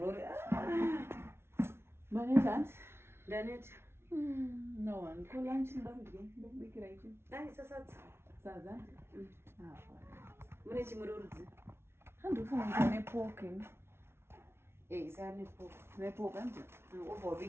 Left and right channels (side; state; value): left; late; 0.12 ms